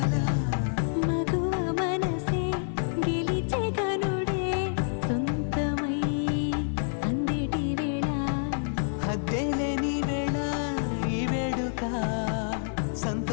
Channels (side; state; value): right; silent; 59 dB below the other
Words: మగువ మనసే గెలిచే కనుడే సొంతమై అందేటి వేళ, హద్దేలేని వేళ ఈ వేడుక,